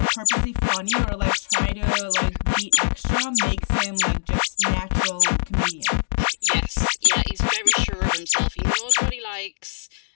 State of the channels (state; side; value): silent; right; digital silence